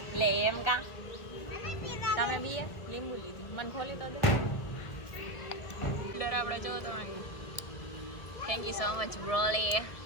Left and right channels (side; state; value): right; late; 1.7 ms